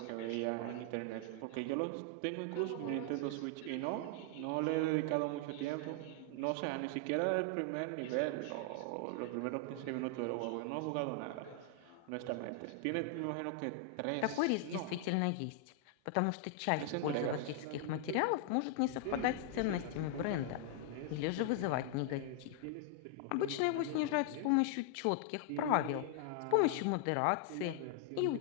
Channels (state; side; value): different; both; correlation 0.00